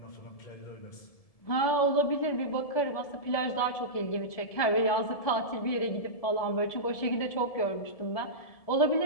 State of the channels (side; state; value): right; late; 1.7 ms